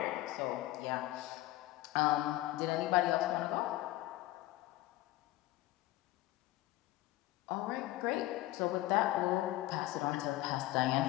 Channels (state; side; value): quieter; right; 16.9 dB